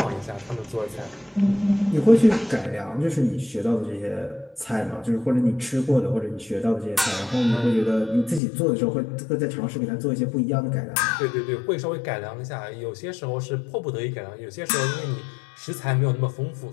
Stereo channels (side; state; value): right; drops out; at 8.4 s